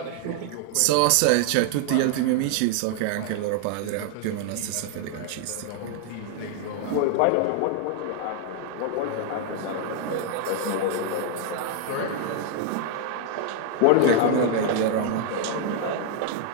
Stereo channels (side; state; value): both; different; correlation 0.00